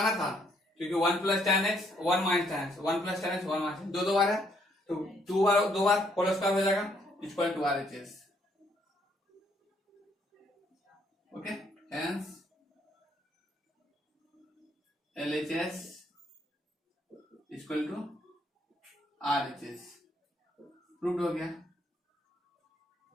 था, क्योंकि 1 plus tan x, 1 minus tan x, 1 plus tan x, 1 minus, दो बार है, तो दो बार होल स्क्वायर हो जाएगा, equal to RHS, okay, hence LHS equal to RHS, proved हो गया।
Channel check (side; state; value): both; normal; correlation 0.69